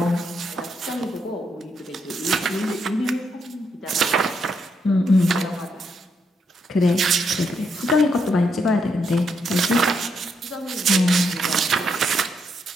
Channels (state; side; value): normal; both; correlation 0.78